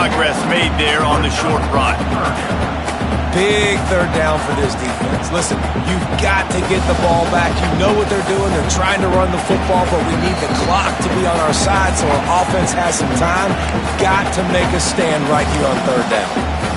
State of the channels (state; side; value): identical; both; correlation 1.00